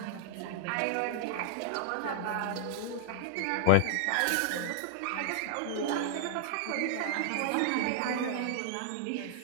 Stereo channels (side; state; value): both; different; correlation 0.00